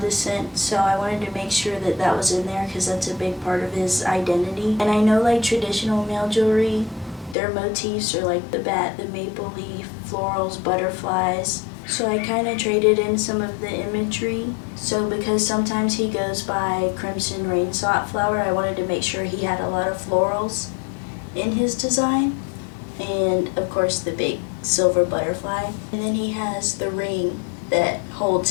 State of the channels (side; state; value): right; drops out; at 7.4 s